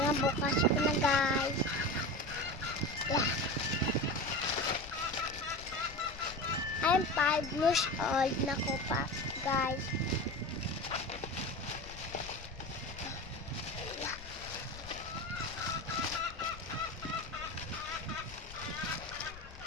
ko na guys. Yeah. I'm 5 years old na ko pa guys. Yeah.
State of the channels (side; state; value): left; noise; rumble, 15 dB below the sound